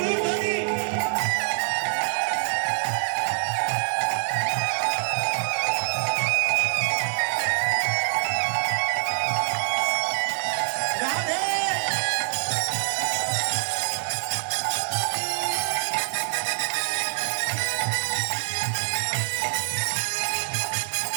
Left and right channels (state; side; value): silent; left; 61 dB below the other